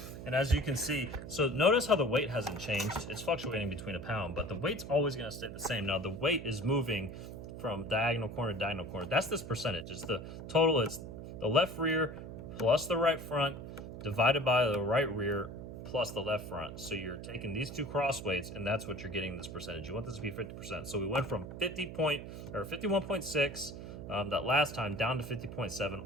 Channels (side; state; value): right; noise; hum, 10 dB below the sound